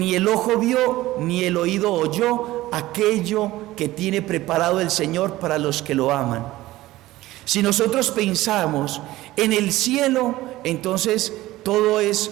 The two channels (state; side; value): quieter; left; 16.9 dB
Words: el ojo vio ni el oído oyó aquello que tiene preparado el Señor para los que lo aman. Si nosotros pensamos en el cielo, entonces todo es